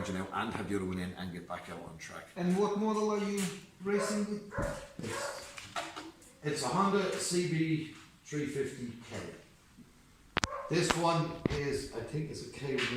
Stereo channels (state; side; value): identical; both; correlation 1.00